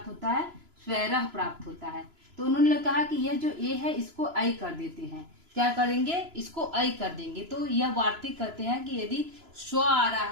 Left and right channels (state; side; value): late; left; 3.0 ms